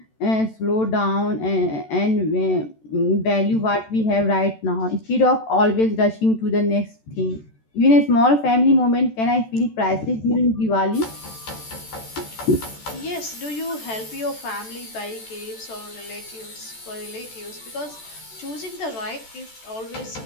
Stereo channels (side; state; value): right; late; 14 ms